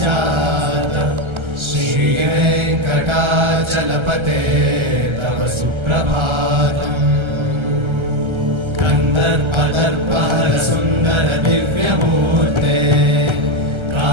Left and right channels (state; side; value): late; left; 1.3 ms